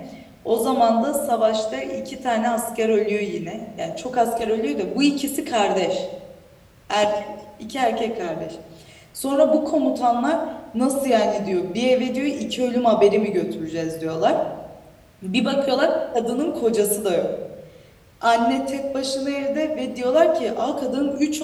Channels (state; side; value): identical; both; correlation 1.00